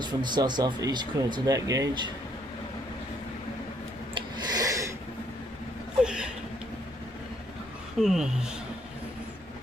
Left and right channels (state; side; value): normal; both; correlation 0.69